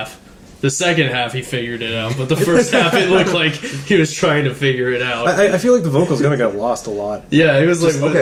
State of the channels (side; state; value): both; identical; correlation 1.00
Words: The second half, he figured it out, but the first half, it looked like he was trying to figure it out. I feel like the vocals kind of got lost a lot. Yeah, it was